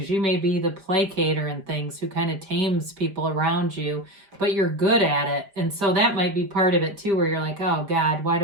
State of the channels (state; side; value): late; left; 5.0 ms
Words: you may be the placater and things who kind of tames people around you, but you're good at it. And so that might be part of it too, where you're like, oh God, why